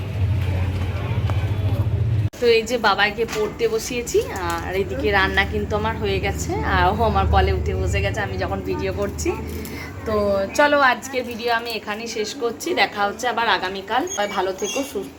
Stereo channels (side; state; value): both; identical; correlation 1.00